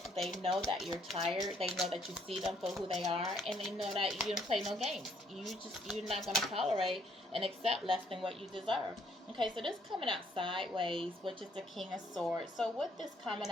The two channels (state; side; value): normal; both; correlation 0.67